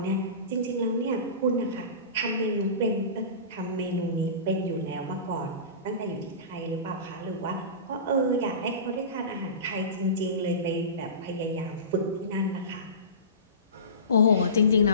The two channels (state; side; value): inverted; both; correlation -0.31